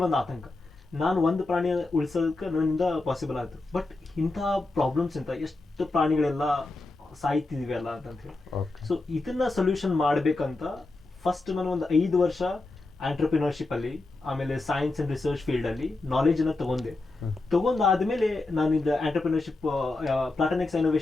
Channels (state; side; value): quieter; right; 3.2 dB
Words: ಒಂದು ಆತಂಕ, ನಾನು ಒಂದು ಪ್ರಾಣಿಯ ಉಳಿಸೋದಕ್ಕೆ ನನ್ನಿಂದ ಪಾಸಿಬಲ್ ಆಯಿತು. ಬಟ್ ಇಂಥ ಪ್ರಾಬ್ಲಮ್ಸ್ ಎಷ್ಟು ಪ್ರಾಣಿಗಳೆಲ್ಲ ಸಾಯ್ತಿದ್ವಿ ಅಲ್ಲ ಅಂತ ಹೇಳಿ. ಸೊ ಇದನ್ನ ಸೊಲ್ಯೂಷನ್ ಮಾಡ್ಬೇಕಂತ ಫಸ್ಟ್ ನಾನು ಒಂದು 5 ವರ್ಷ ಆಂಟ್ರಪ್ರಿನರ್ಶಿಪ್ ಅಲ್ಲಿ, ಆಮೇಲೆ ಸೈನ್ಸ್ ಅಂಡ್ ರಿಸರ್ಚ್ ಫೀಲ್ಡ್ ಅಲ್ಲಿ ನಾಲೆಜ್ ಅನ್ನ ತಗೊಂಡಾದ್ಮೇಲೆ ನಾನು ಇದು ಆಂಟ್ರಪ್ರಿನರ್ಶಿಪ್ ಪ್ಲಾಟೋನಿಕ್ಸ್